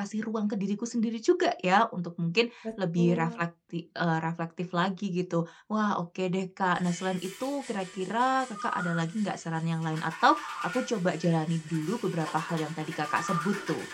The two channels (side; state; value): both; identical; correlation 1.00